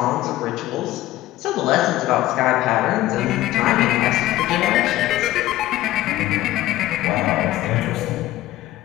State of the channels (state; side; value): quieter; right; 15.5 dB